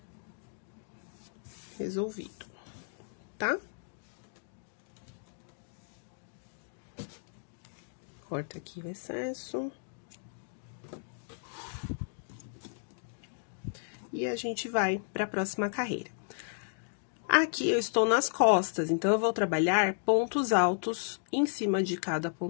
Resolvido, tá? Corta aqui o excesso. E a gente vai para a próxima carreira. Aqui eu estou nas costas, então eu vou trabalhar pontos altos em cima de cada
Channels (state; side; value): silent; right; digital silence